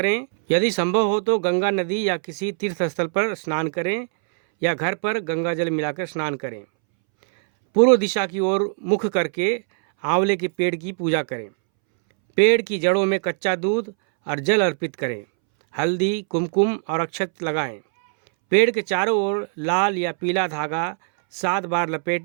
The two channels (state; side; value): silent; left; 64 dB below the other